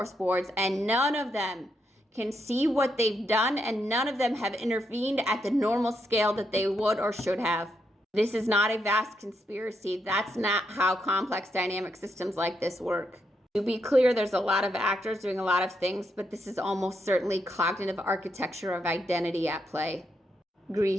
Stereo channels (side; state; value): both; normal; correlation 0.80